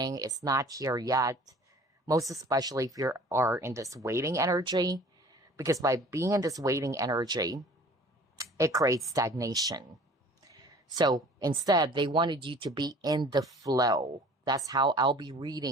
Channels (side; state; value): both; normal; correlation 0.48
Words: It's not here yet. Most especially if you are in this waiting energy. Because by being in this waiting energy, it creates stagnation. So instead, they wanted you to be in the flow. That's how I'll be